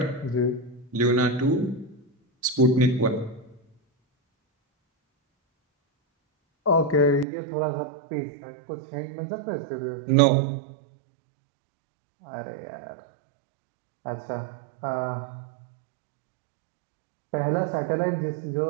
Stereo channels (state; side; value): drops out; left; at 7.2 s